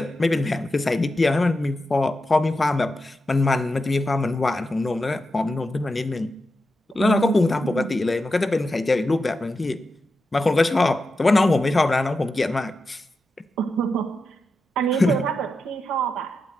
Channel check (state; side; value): normal; both; correlation 0.89